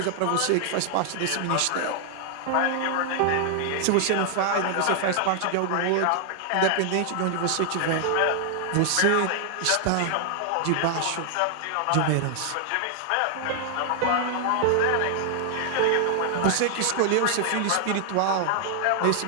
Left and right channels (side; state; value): both; different; correlation 0.00